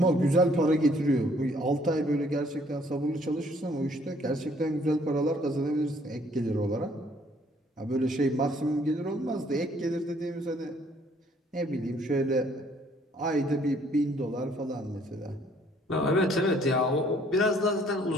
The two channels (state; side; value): normal; both; correlation 0.62